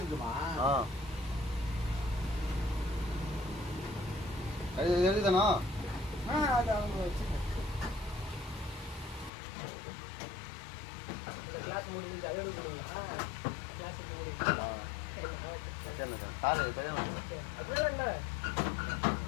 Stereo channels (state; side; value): drops out; right; at 9.3 s